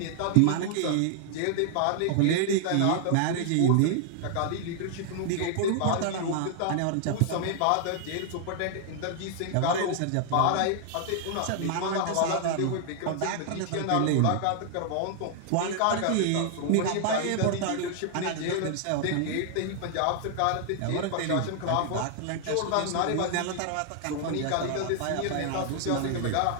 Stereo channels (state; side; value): different; both; correlation 0.00